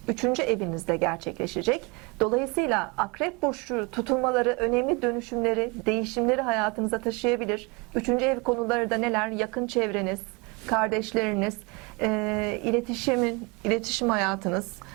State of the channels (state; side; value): quieter; left; 28.7 dB